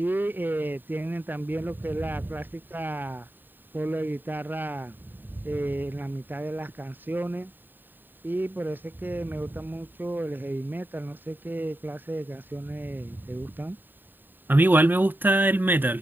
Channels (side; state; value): left; late; 0.092 ms